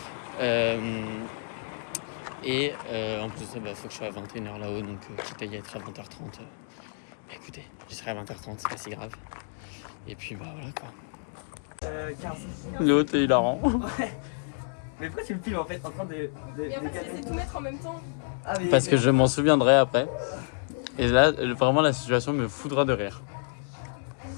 En plus de ça, faut que je sois à 21h là-haut. Donc, quitte à y être à 20h30. Écoutez, j'y serai à 20h30, c'est pas si grave. Et puis, bah voilà quoi. 15. Léo, t'es hilarant. Mais pourquoi tu me filmes en fait en train de. Et en fait, c'est tout mettre en même temps. Ah, mais. Parce que je m'en souviendrai après. Et là, vraiment, la situation me foudra de rire.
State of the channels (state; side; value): silent; right; digital silence